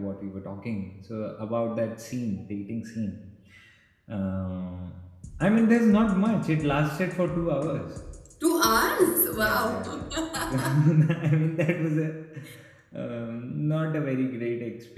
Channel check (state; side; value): identical; both; correlation 1.00